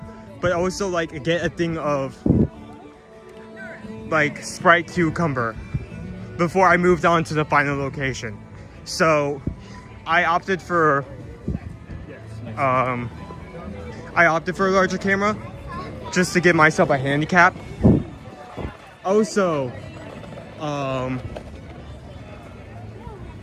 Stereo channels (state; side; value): identical; both; correlation 1.00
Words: but also like get a thing of like Sprite cucumber. before I moved on to the final location. So I opted for a larger camera just to give myself a handicap. Also, I